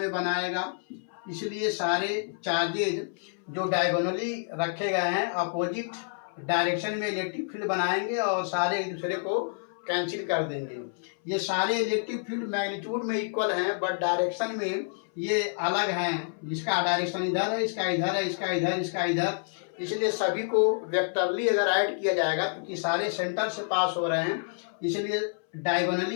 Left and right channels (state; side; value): silent; right; 59 dB below the other